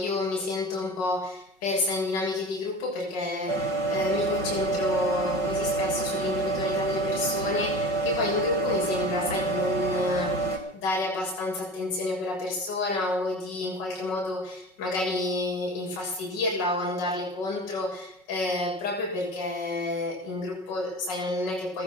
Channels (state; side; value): late; right; 5.4 ms